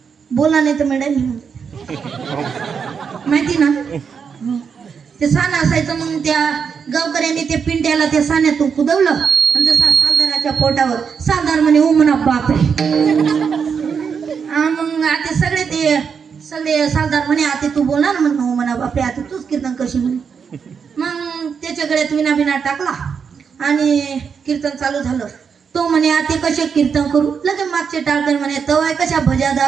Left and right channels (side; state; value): left; quieter; 6.4 dB